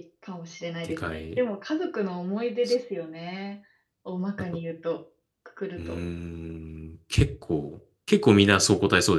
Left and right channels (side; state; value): both; identical; correlation 1.00